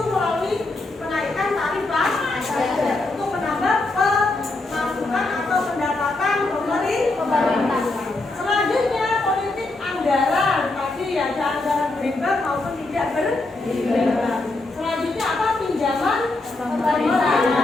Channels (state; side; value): quieter; right; 3.0 dB